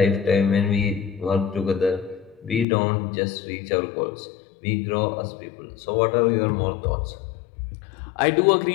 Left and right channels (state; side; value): drops out; right; at 2.7 s